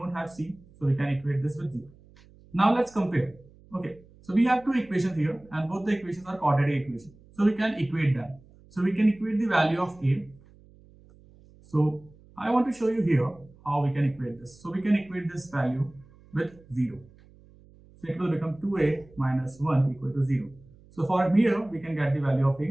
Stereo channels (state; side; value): noise; right; hum, 26 dB below the sound